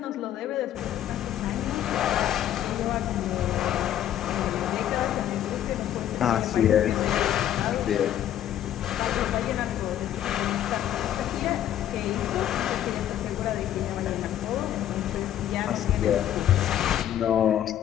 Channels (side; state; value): right; quieter; 11.3 dB